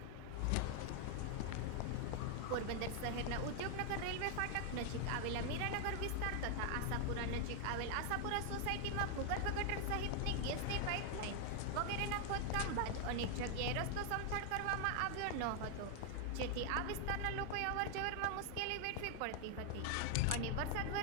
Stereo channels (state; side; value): different; both; correlation 0.00